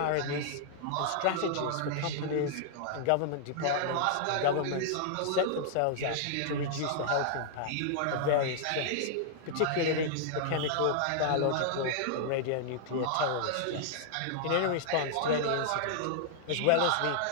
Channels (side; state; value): both; different; correlation -0.01